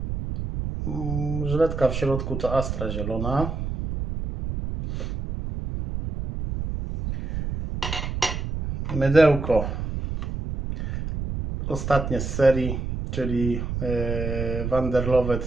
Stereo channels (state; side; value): noise; right; rumble, 4 dB below the sound